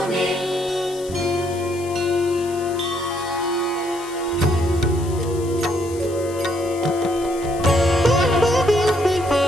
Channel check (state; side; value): noise; left; hiss, 17 dB below the sound